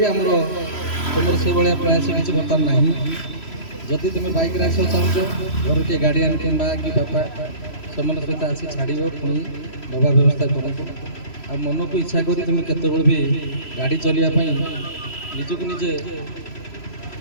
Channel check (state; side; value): late; right; 3.0 ms